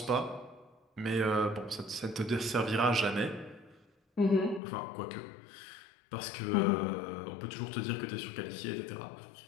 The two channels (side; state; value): right; drops out; at 4.6 s